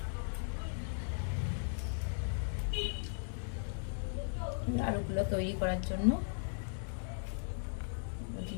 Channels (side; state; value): right; silent; digital silence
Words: আলুগুলো তৈরি করার জন্য